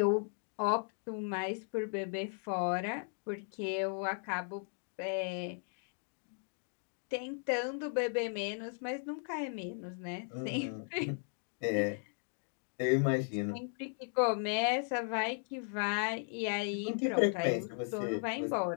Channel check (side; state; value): right; silent; 53 dB below the other